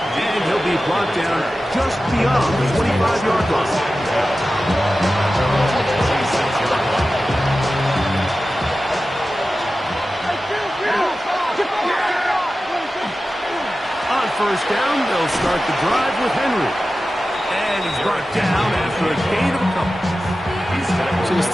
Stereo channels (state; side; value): normal; both; correlation 0.94